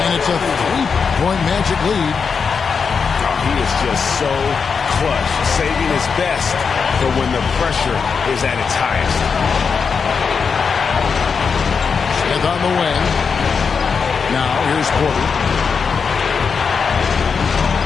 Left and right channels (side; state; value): right; quieter; 5.7 dB